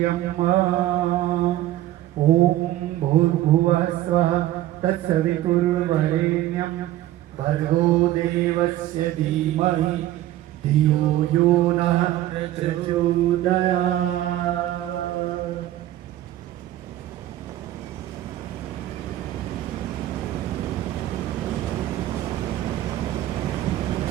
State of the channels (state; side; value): quieter; left; 14.2 dB